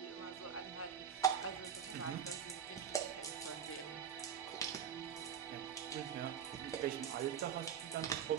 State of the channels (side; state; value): left; quieter; 8.1 dB